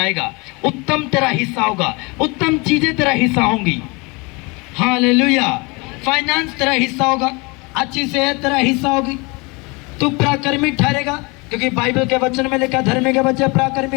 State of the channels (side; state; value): right; quieter; 27.7 dB